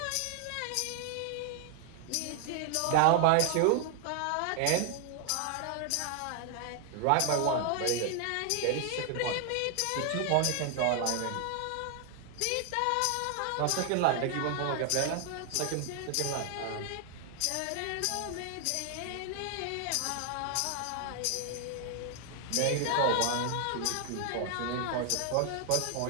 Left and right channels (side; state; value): both; different; correlation 0.00